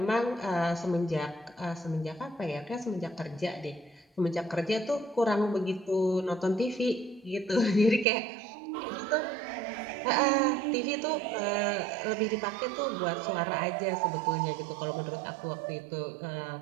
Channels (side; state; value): left; drops out; at 8.1 s